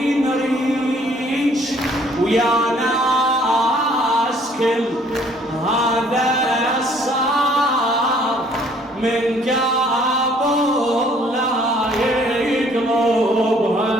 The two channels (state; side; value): normal; both; correlation 0.60